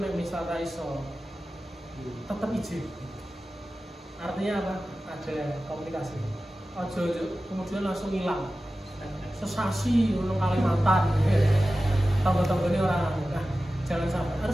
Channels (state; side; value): normal; both; correlation 0.95